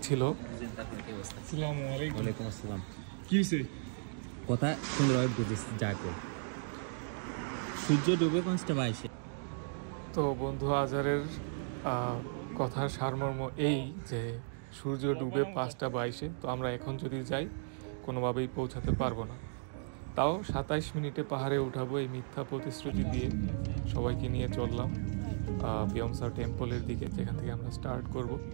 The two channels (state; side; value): silent; left; digital silence